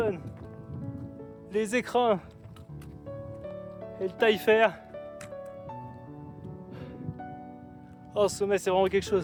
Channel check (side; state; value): both; identical; correlation 1.00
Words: les Écrins et le Taillefer. Oh, ce sommet, c'est vraiment quelque